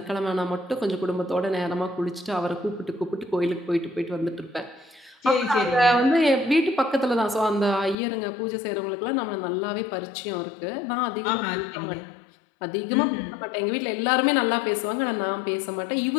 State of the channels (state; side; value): drops out; right; at 8.0 s